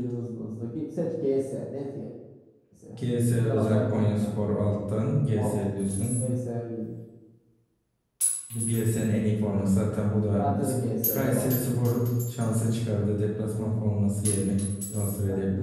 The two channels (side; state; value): both; identical; correlation 1.00